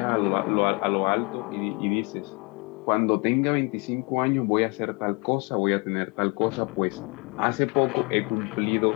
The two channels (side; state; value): right; quieter; 30.9 dB